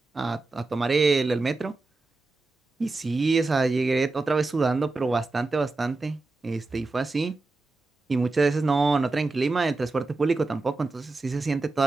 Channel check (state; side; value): quieter; left; 3.4 dB